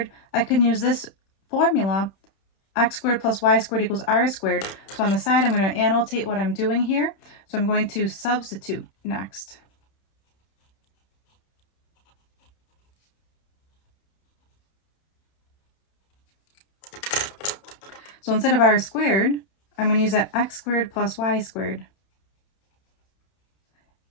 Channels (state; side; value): late; right; 31 ms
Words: I can use this formula, x squared plus y squared equals r squared. So on the side, I'm going to annotate what I'm doing here. So I'm going to substitute next. So instead of r squared, I'm going to use that x squared plus y squared